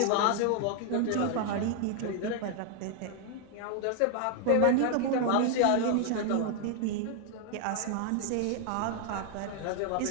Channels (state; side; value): different; both; correlation 0.00